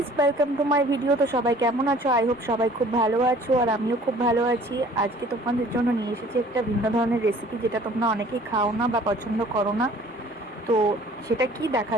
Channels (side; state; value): both; normal; correlation 0.52